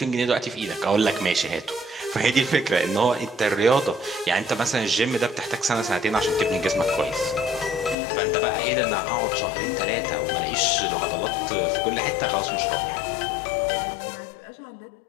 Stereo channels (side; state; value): right; drops out; at 8.0 s